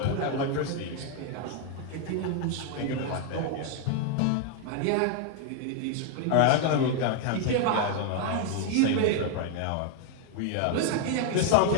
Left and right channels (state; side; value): different; both; correlation 0.00